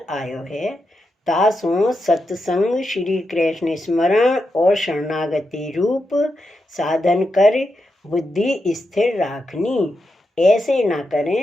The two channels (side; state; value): both; normal; correlation 0.86